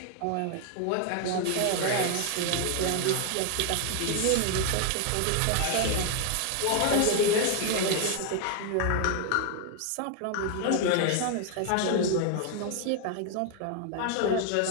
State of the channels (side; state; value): both; different; correlation 0.00